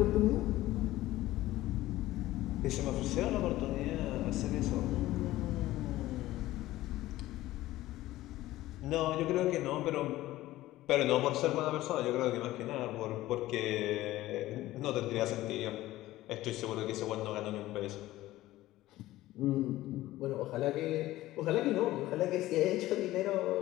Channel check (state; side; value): quieter; right; 16.3 dB